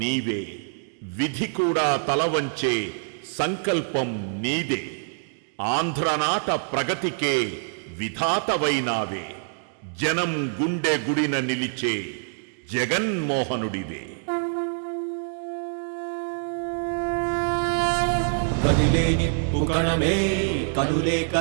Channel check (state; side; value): silent; left; digital silence